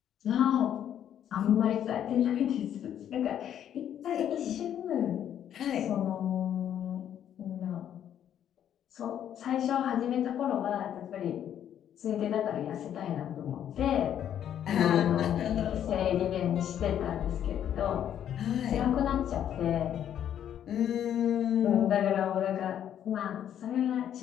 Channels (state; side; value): quieter; right; 10.0 dB